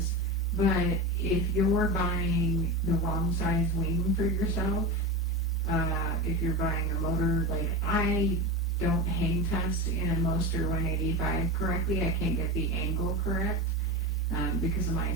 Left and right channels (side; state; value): both; normal; correlation 0.24